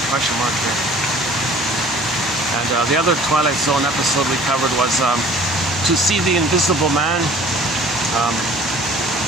question mark here. And the other Twilight Zone episode we covered was To See the Invisible Man.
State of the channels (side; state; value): both; normal; correlation 0.49